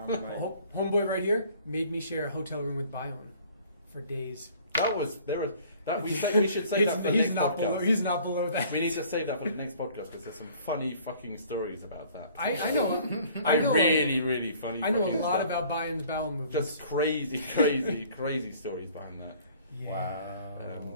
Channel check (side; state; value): both; inverted; correlation -0.53